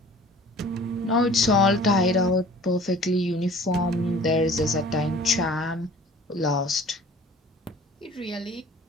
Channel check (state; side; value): normal; both; correlation 0.48